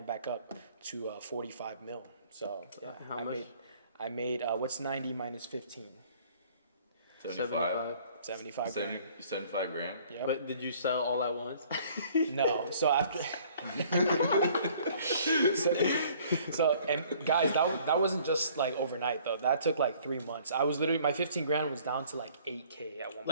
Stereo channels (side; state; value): both; inverted; correlation -0.57